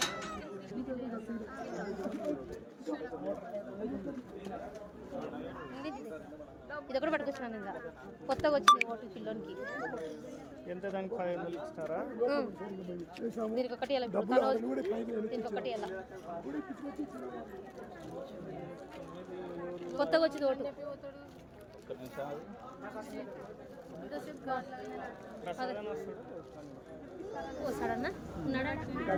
ఇది ఒకటి పట్టుకొచ్చినాను ఇంకా కొత్తగా వచ్చింది ఓటు పిల్లోనికి ఎంత దానికి 500 ఇస్తారా దీనికి ఒకటి ఎలా దీనికి ఒకటి ఎలా కొత్తగా వచ్చింది ఓటు వస్తాడన్నా ఉన్నాడా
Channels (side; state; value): both; identical; correlation 1.00